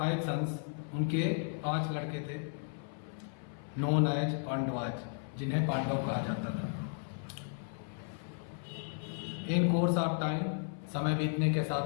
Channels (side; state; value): right; silent; 55 dB below the other